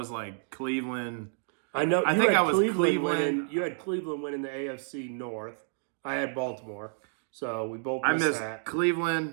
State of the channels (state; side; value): silent; left; digital silence